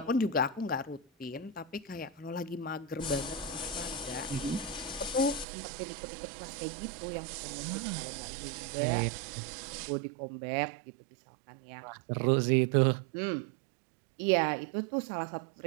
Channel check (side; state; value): left; drops out; at 5.5 s